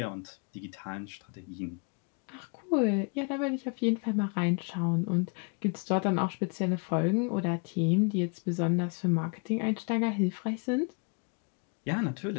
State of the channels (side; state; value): right; quieter; 35.3 dB